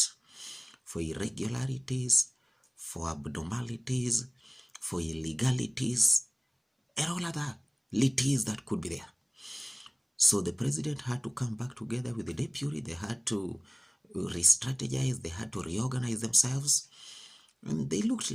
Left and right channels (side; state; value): both; identical; correlation 1.00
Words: for irregularities, for abnormalities, for illegalities, and all other lities that could be there. So the president had to come back together with the deputy. They had to re-strategize. They had to reorganize themselves. And they looked